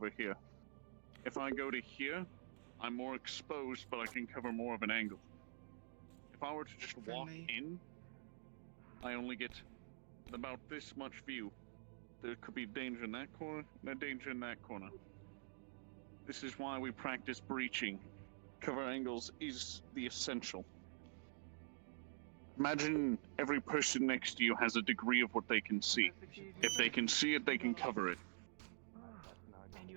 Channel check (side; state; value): left; silent; digital silence